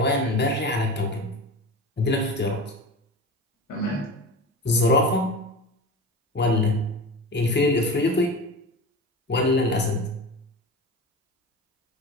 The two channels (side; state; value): both; normal; correlation 0.30